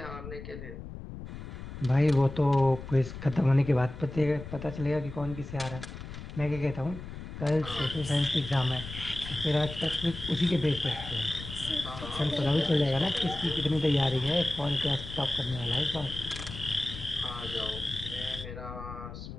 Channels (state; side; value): noise; left; rumble, 11 dB below the sound